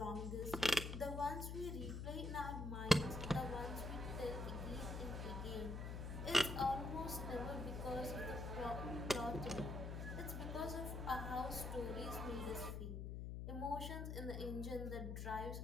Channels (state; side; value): noise; left; hum, 4 dB below the sound